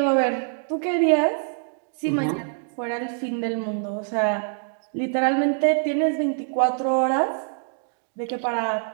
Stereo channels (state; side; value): silent; left; digital silence